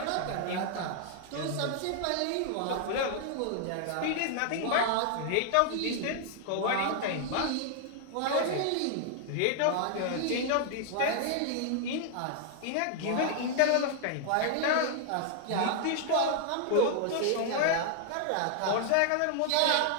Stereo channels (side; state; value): both; different; correlation 0.00